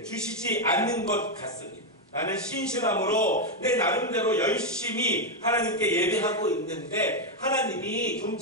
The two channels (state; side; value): normal; both; correlation 0.03